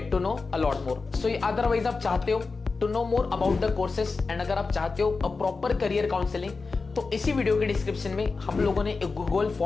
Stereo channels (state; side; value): quieter; right; 4.2 dB